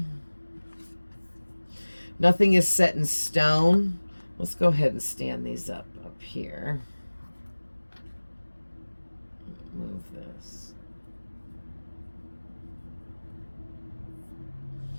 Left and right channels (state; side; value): inverted; both; correlation -1.00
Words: Nothing is set in stone. Let's go ahead and stand these up here. Move this.